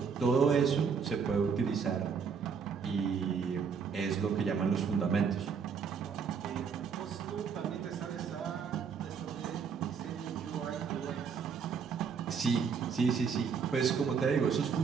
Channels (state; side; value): quieter; left; 6.2 dB